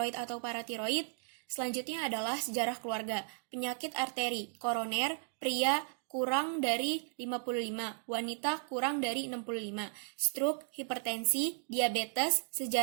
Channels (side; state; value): left; silent; 54 dB below the other